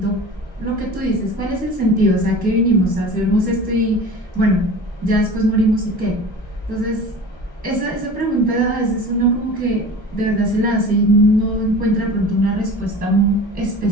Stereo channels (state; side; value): normal; both; correlation 0.37